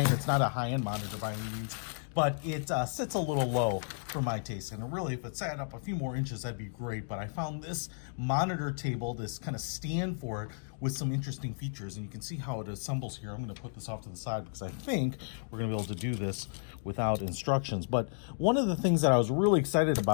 It's not a high-end monitor by any means, but it sits a little low for my taste. And really, if it sat up a few more inches, that'd be great. But I found this monitor table, this kind of stand for it, with some interesting features. And you can see how it assembles here. I'm going to put this off to the side because I think we're going to be able to do this without instructions. But one of the things that I was really excited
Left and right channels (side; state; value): right; silent; digital silence